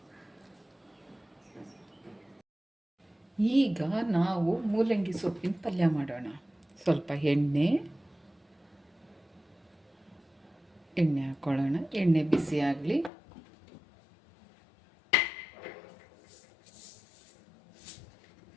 ಈಗ ನಾವು ಮೂಲಂಗಿ ಸೊಪ್ಪಿನ ಪಲ್ಯ ಮಾಡೋಣ. ಸ್ವಲ್ಪ ಎಣ್ಣೆ ಹಾಕ್ಕೊಳ್ಳೋಣ. ಎಣ್ಣೆ ಬಿಸಿ ಆಗಲಿ.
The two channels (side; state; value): right; drops out; at 13.1 s